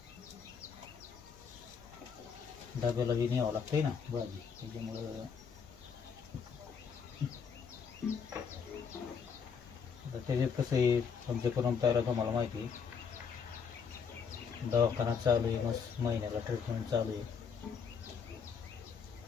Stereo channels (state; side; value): quieter; right; 6.3 dB